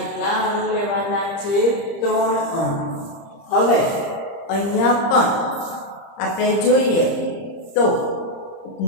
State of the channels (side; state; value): right; late; 30 ms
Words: અણુ લેવાના છે, ત્રણ અણુ. હવે અહીંયા પણ આપણે જોઈએ તો